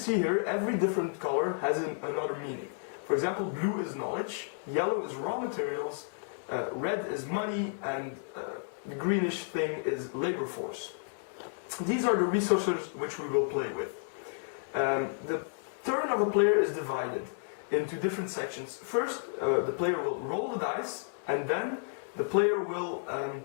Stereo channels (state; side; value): silent; right; digital silence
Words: here, every different color has another meaning. For example, blue is knowledge, yellow is raw materials, red is money, and the greenish thing is labor force. These are the resources which we will play with. The turn of a player is divided into different sections. First, the player will roll the dice, and then the player will